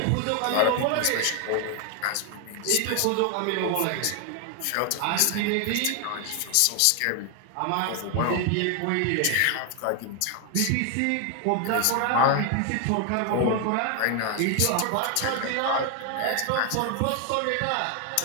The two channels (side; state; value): both; different; correlation 0.01